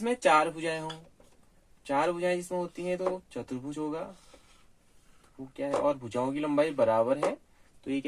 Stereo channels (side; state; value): both; identical; correlation 1.00